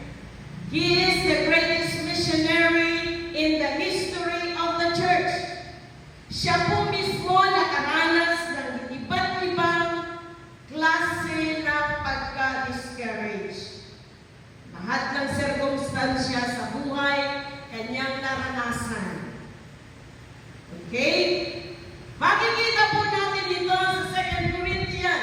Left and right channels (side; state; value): both; identical; correlation 1.00